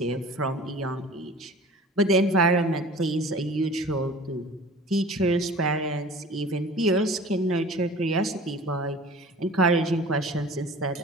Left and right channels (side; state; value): both; normal; correlation 0.44